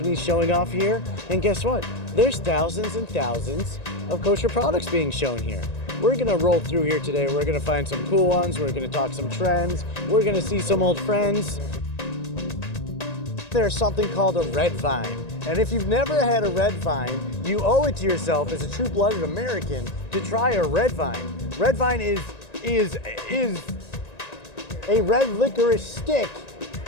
showing off here. And guess what? There's thousands and thousands of kosher products being shown here. We're gonna roll through here today. We're gonna find some cool ones. We're gonna talk some trends. We're gonna see some old friends. There's something called a red vine. And if you've never had a red vine, you owe it to yourself as a true-blooded American to try a red vine. Red vine is a red licorice stick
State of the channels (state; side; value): late; right; 1.9 ms